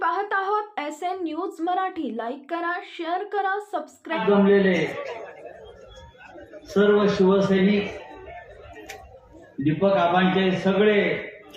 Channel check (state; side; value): identical; both; correlation 1.00